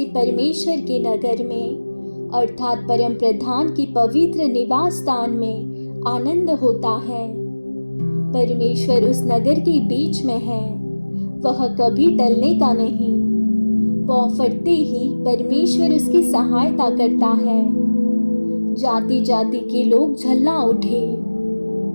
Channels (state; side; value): inverted; both; correlation -1.00